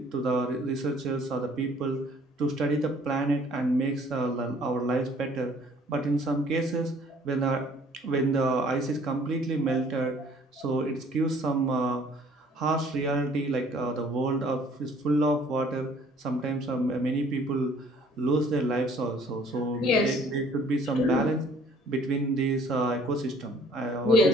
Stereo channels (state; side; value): normal; both; correlation 0.57